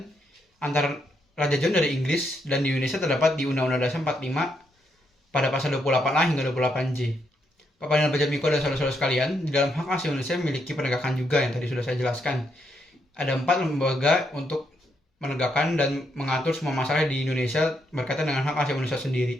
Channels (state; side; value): normal; both; correlation 0.78